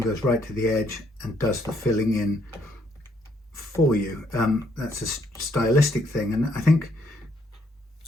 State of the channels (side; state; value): both; normal; correlation 0.70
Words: right to the edge and does the filling in for you. That's a stylistic thing, and I think